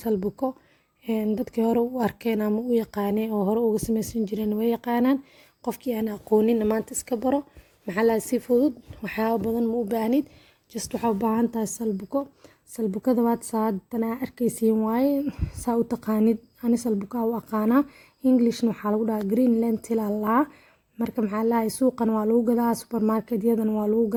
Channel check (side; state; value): both; identical; correlation 1.00